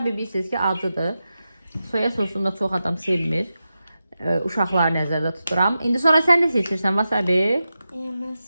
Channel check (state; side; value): inverted; both; correlation -0.91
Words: bilirsiniz ki, acıdır. Soya sosunu da çox adam sevmir. Uşaqları nəzərdə tuturam. İndi sonra sən nə seçirsən? Wasabi. Ben